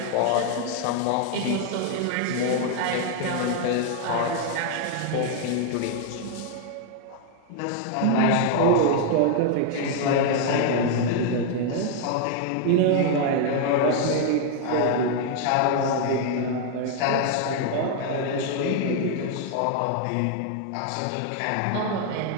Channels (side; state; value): both; different; correlation 0.00